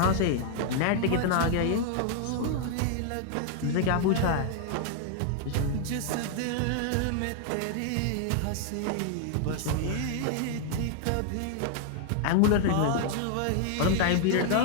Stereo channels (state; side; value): different; both; correlation 0.00